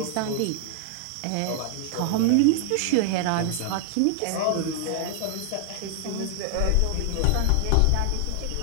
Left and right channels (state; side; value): different; both; correlation 0.00